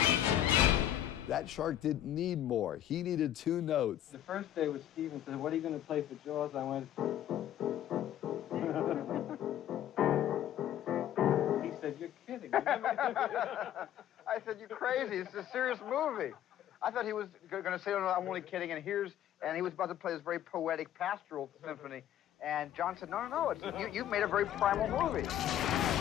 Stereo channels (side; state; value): right; quieter; 11.5 dB